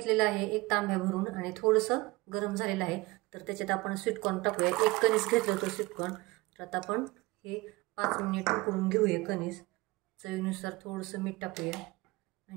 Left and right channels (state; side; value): quieter; left; 22.2 dB